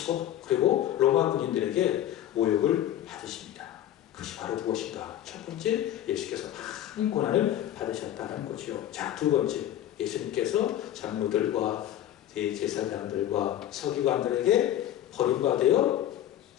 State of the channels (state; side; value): quieter; right; 12.0 dB